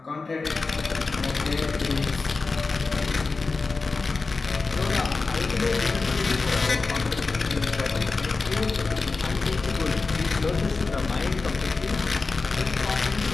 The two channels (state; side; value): quieter; right; 4.0 dB